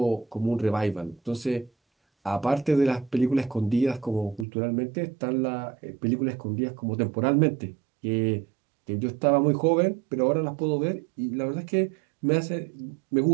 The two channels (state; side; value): drops out; left; at 4.5 s